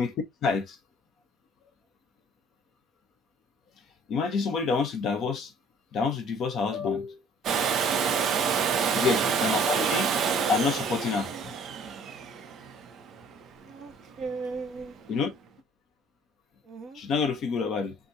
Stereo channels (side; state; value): both; normal; correlation 0.54